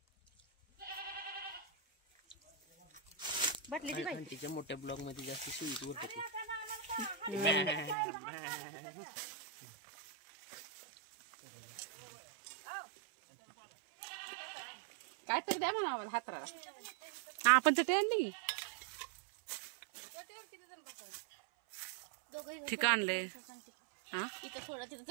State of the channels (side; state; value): left; drops out; at 8.0 s